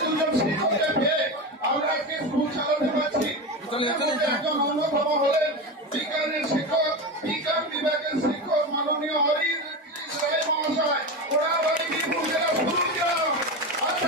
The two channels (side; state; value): both; normal; correlation 0.21